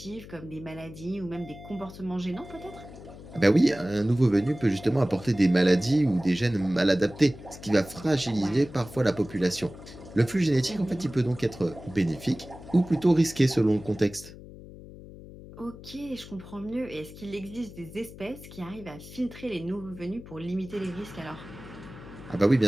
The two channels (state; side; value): noise; left; hum, 16 dB below the sound